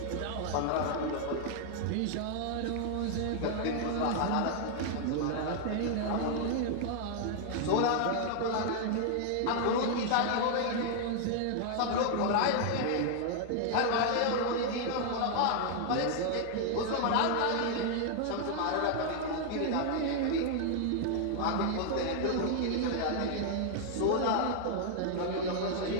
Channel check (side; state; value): both; different; correlation 0.00